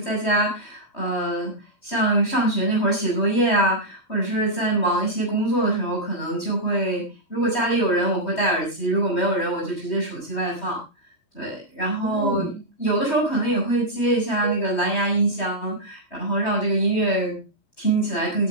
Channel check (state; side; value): late; right; 3.2 ms